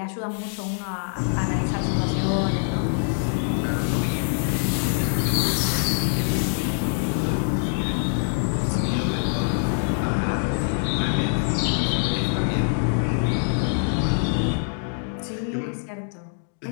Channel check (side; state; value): right; silent; digital silence